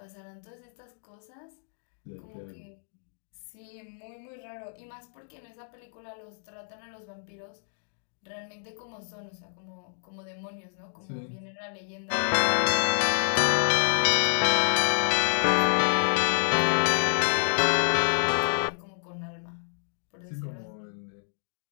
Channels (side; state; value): right; silent; digital silence